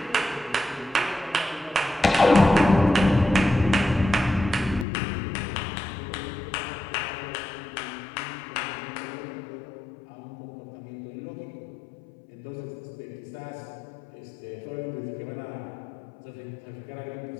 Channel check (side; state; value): right; drops out; at 4.9 s